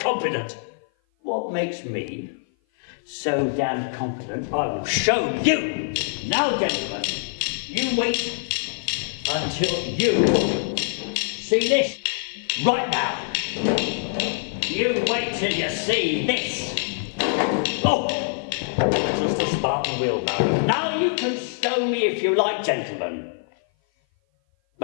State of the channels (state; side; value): silent; right; 56 dB below the other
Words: What makes me so damn confident? I will show you. Now, gentlemen, you wait until you see this right now. You wait till you see this. Oh, just a Spartan wheelbarrow. Now you can stone me if you like, gentlemen.